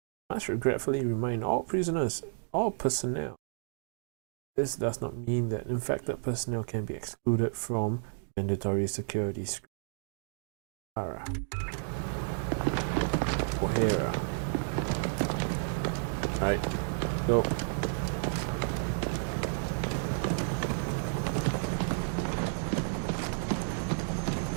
I must regretfully remind all prisoners, all personnel. This does not mean that infected personnel can be excluded from mandatory security screening. O'Hara. Right, go.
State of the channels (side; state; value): left; silent; digital silence